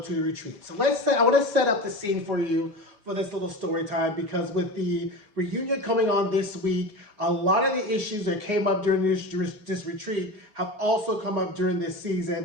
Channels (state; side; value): late; left; 4.9 ms